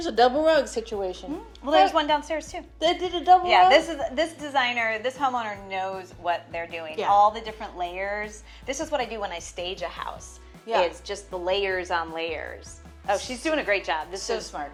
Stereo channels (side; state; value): both; identical; correlation 1.00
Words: a double rug situation. Well, there's one downstairs too. They did a double rug? Yeah, this designer, this homeowner knows what they're doing. Yeah. All the different layers. This is what I do when I stage a house. Yeah. Is just the layers on layers. Oh, she's doing a great job. This So is smart.